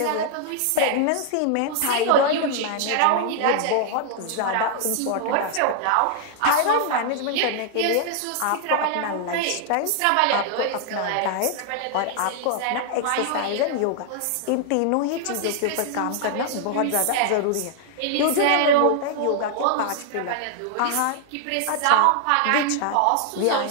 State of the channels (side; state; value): both; different; correlation 0.00